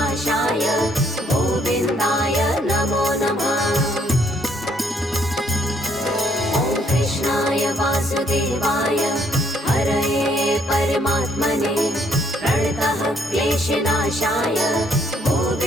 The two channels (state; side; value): normal; both; correlation 0.68